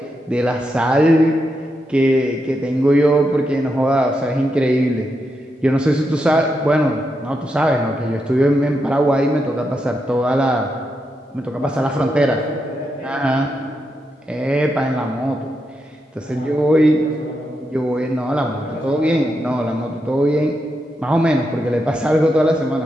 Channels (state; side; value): normal; both; correlation 0.84